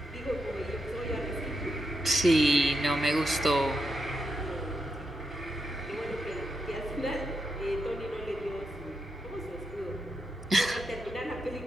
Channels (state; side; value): normal; both; correlation 0.84